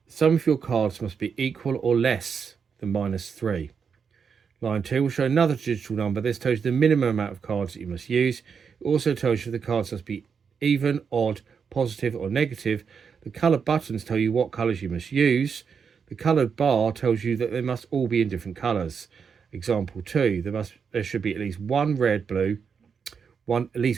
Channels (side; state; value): left; quieter; 6.3 dB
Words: the sum of your cards must be equal or less than -3. Line 2 will show another digital number. This tells you the minimum amount of cards that you must use. It also tells you the cards must be even, odd, positive or negative. The coloured buttons tell you what colours you must use. The coloured bar tells you that they must all be in different colours. Example 2, there should be at least one red and